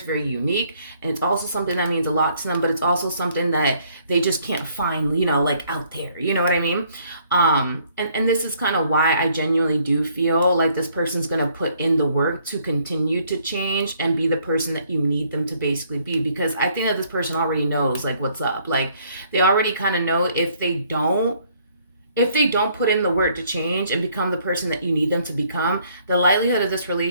very unique, and it's also something that means a lot to them, but it's also something that they just can't find, like out there, you know what I mean? And this is kind of why I genuinely do feel like this person's gonna put in the work to continue to change and be the person that you need them to basically be, because I think that this person already knows like what's up. Like they already kind of know if they don't put in the work to change and become the person that you need them to become, the likelihood of this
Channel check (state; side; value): inverted; both; correlation -0.65